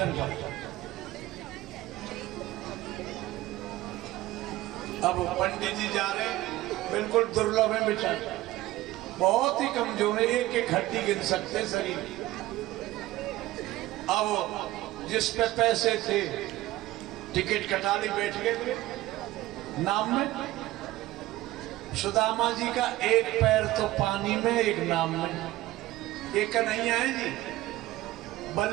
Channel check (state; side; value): quieter; left; 16.8 dB